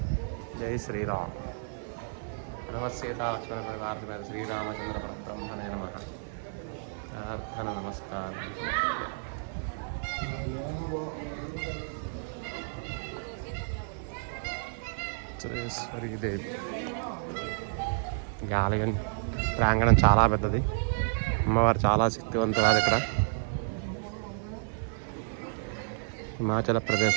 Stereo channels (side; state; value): left; silent; 57 dB below the other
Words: జై శ్రీరామ్. సీతా లక్ష్మణ పరివార శ్రీరామచంద్ర పరబ్రహ్మణే నమః. ప్రార్థన నమస్కారం. వజ్రేశ్వరీదేవి. ఈ ఆలయం ప్రాంగణం చాలా పెద్దది. అమ్మవారు చాలా శక్తివంతురాలు. ఇక్కడ హిమాచల్